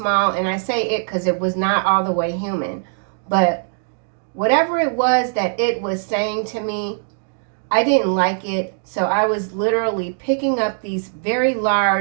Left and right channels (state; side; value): silent; left; digital silence